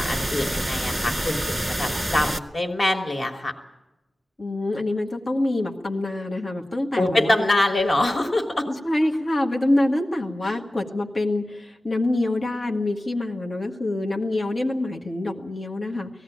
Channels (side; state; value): both; normal; correlation 0.95